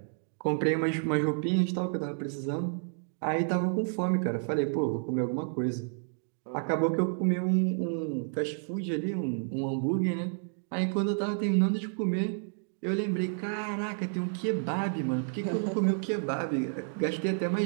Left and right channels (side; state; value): left; silent; digital silence